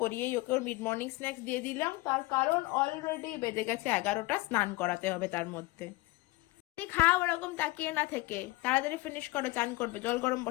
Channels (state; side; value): quieter; right; 20.8 dB